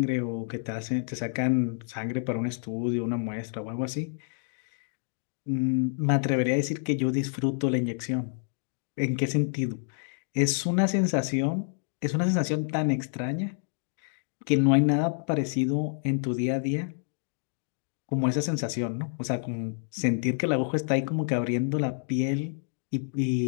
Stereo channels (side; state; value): right; silent; digital silence